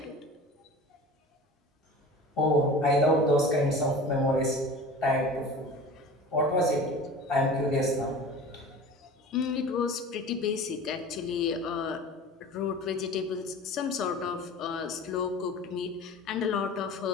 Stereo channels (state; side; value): normal; both; correlation 0.38